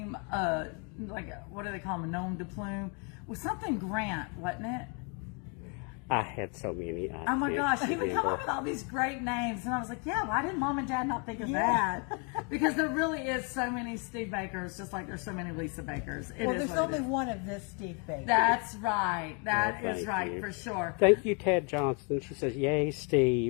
like, what do they call him, a gnome de plume? With something Grant, wasn't it? I had so many. Oh my gosh, he would come up with all these great names, and I was like, yeah, why didn't Mom and Dad not think of that? Because there really is so many Steve Bakers, just like there's so many Lisa Bakers. Well, there's only one of this Steve Baker. That's right. That is thank right, you. for sure. Thank you, Ted Johnson. She says, yay,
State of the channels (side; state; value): right; quieter; 35.8 dB